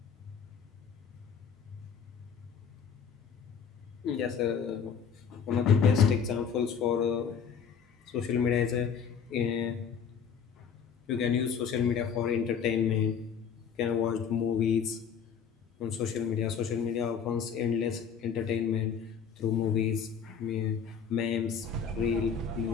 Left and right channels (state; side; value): quieter; right; 7.0 dB